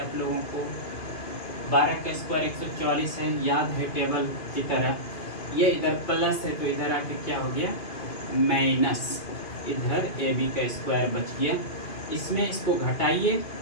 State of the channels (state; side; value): late; right; 2.5 ms